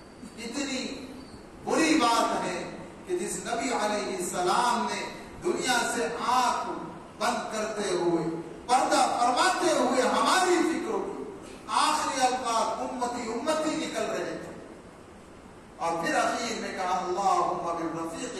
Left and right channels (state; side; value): identical; both; correlation 1.00